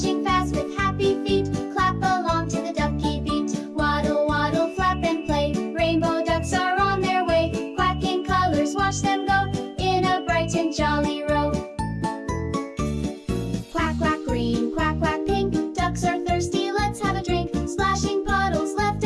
fast with happy feet. Clap along to the ducky beat. Waddle, waddle, flap and play. Rainbow ducks are on their way. Quacking colors, watch them go in a bright and jolly row. Quack, quack green, quack, quack pink. Ducks are thirsty, let's have a drink. Splashing puddles left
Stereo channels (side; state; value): both; identical; correlation 1.00